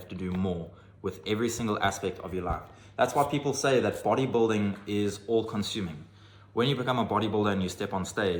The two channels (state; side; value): identical; both; correlation 1.00